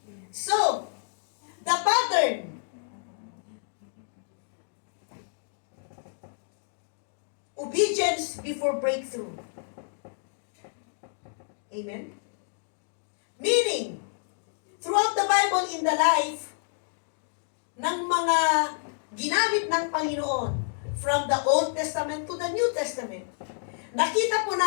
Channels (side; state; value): right; silent; digital silence